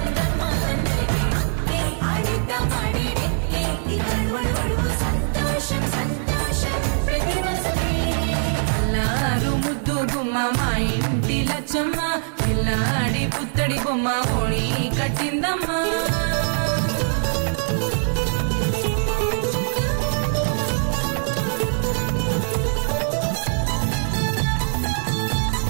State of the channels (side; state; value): left; silent; digital silence